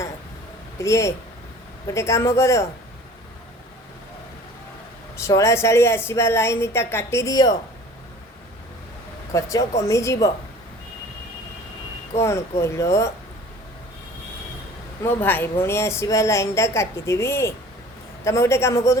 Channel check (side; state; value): both; normal; correlation 0.46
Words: प्रिय। गोटे काम कर, शला शाड़ी आसवा लाइनटा काटी दियो, खर्च कमिजिब। कौन कहल? मो भाई भौणी आसवा लाइनटा काटिदेवी। तुम गोटे काम कर